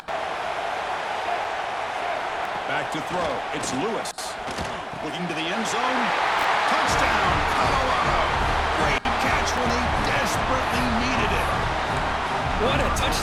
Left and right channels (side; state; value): both; identical; correlation 1.00